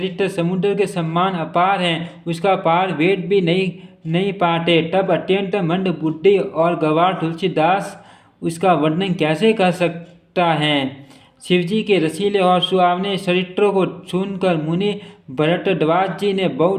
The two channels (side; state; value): both; identical; correlation 1.00